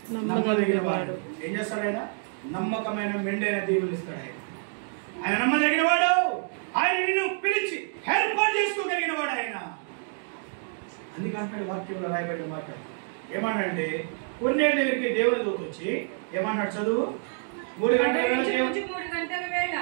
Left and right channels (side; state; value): left; silent; 60 dB below the other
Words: నమ్మదగిన వాడు. ఏం చేస్తాడు ఆయన? నమ్మకమైన మెండైన దేవుని ఇస్తాడు ఆయన. ఆయన నమ్మదగిన వాడు. ఆయన నిన్ను పిలిచి ఏర్పాటు చేసుకోగలిగిన వాడు ఆయన. అందుకంటే వాక్యంలో రాయబడిన మాట ఏమన్నాడంటే, కొన్నేళ్ళ దగ్గరికి దేవుని దూత వచ్చి ఏమన్నాడు? చదువు. 3 గంటల వేళ